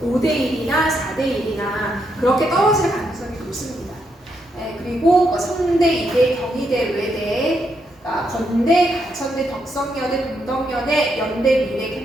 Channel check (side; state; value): both; normal; correlation 0.79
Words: 5대1이나 4대1이나 그렇게 떨어질 가능성이 높습니다. 네, 그리고 성대, 이대, 경희대, 외대, 건대, 가천대, 덕성여대, 동덕여대, 연대, 미래